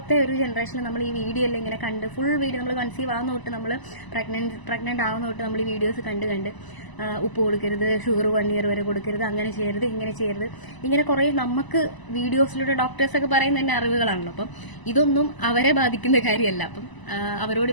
ഒരു ജനറേഷനിൽ നമ്മൾ ഈ വീഡിയോ എല്ലാം ഇങ്ങനെ കണ്ട് ഫുൾ വീഡിയോ നമ്മൾ കൺസീവ് ആവുന്ന തൊട്ട് നമ്മൾ പ്രഗ്നന്റ് ആവുന്ന തൊട്ട് നമ്മൾ ഈ വീഡിയോസ് കണ്ട് ഉപ്പ് കൊടുക്കരുത്, ഷുഗർ 1 year വരെ കൊടുക്കരുത്, അങ്ങനെ ചെയ്യരുത്, ഇങ്ങനെ ചെയ്യരുത്, ഇങ്ങനെ കുറെ നമുക്ക് വീഡിയോസിലൂടെ ഡോക്ടേഴ്സൊക്കെ പറയുന്ന തന്നെ അറിവുകളാണല്ലോ. അപ്പം ഇതൊന്നും അവരെ ബാധിക്കുന്ന കാര്യമല്ല. അപ്പം അവരോട്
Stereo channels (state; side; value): late; right; 1.0 ms